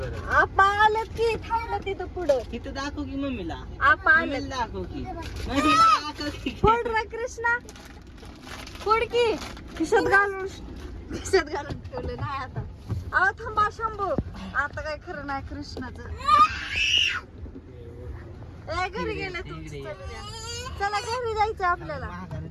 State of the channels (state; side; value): identical; both; correlation 1.00